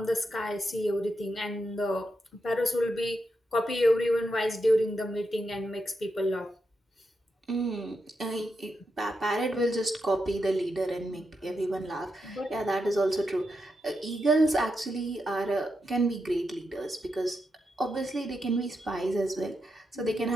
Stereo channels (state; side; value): normal; both; correlation 0.85